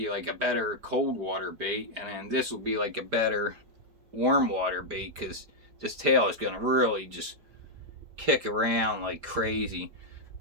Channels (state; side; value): late; left; 5.0 ms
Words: like a better cold water bait, and then this will be like a better warm water bait, because this tail is going to really just kick around like crazy.